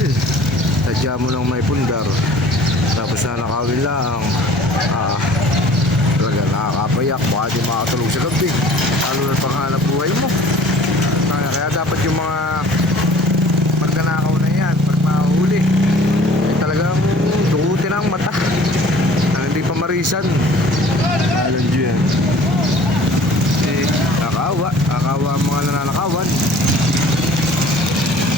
Sadya mo lang may pundar. Tapos nanakawin lang. Talaga nakakapayak. Baka di makatulog sa gabi. Lalo na panghanap buhay mo. Kaya dapat yung mga pagkanakaw na yan, pag mahuli, ay talagang dukutin ang mata. Hindi pa marisan. Alam nyo yan. Nakakawa ang mga nananakawan.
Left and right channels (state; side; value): normal; both; correlation 0.49